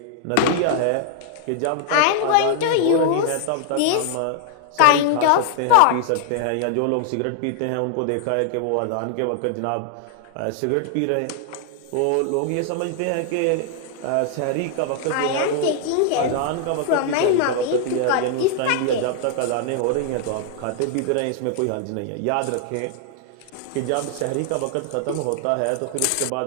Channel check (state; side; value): different; both; correlation 0.00